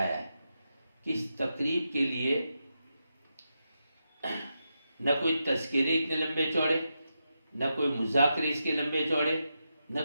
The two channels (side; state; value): both; inverted; correlation -0.87